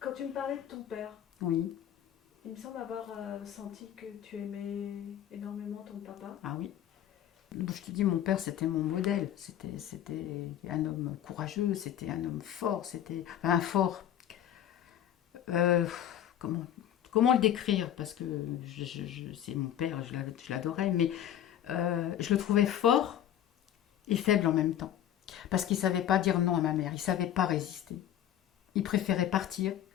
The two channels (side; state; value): right; quieter; 11.0 dB